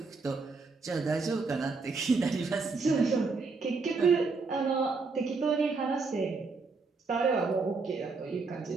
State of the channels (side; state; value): left; quieter; 4.3 dB